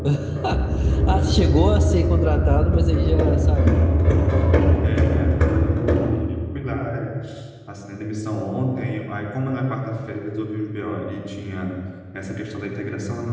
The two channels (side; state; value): both; identical; correlation 1.00